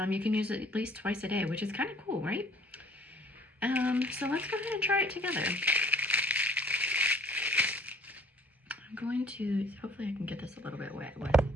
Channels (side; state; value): both; normal; correlation 0.55